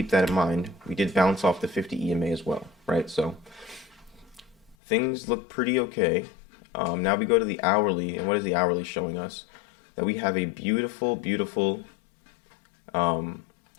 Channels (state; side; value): drops out; right; at 4.8 s